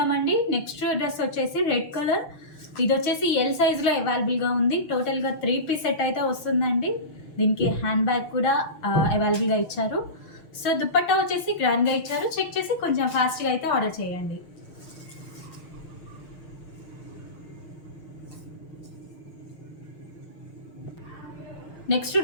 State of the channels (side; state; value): right; late; 6.3 ms